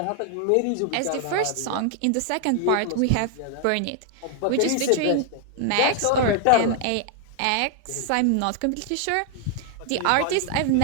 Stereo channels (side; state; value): both; different; correlation 0.00